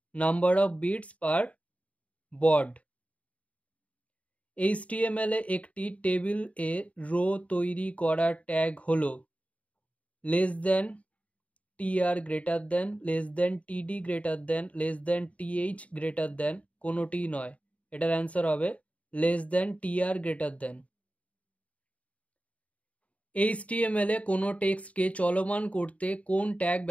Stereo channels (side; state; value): right; late; 0.066 ms